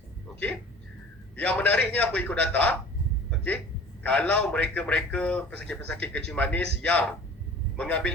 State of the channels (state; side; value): normal; both; correlation 0.44